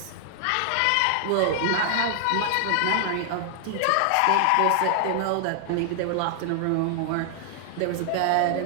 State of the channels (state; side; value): different; both; correlation 0.00